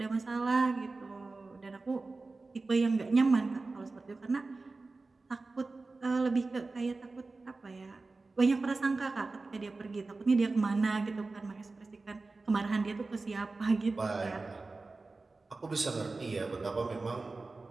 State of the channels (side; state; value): left; quieter; 3.6 dB